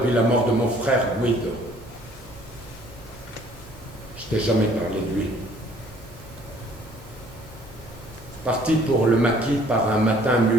la mort de mon frère Guido. Je t'ai jamais parlé de lui. Parti pour le maquis par un matin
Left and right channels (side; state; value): both; normal; correlation 0.58